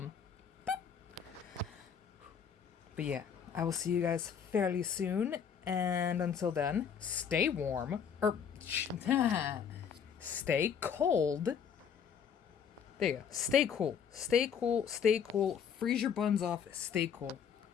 yeah, I will see you guys fairly soon. And until then, stay warm, or stay cold. There you go. Stay cool. Stay cool. Stay cool. Freeze your buns off. Stay cool.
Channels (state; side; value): quieter; right; 7.4 dB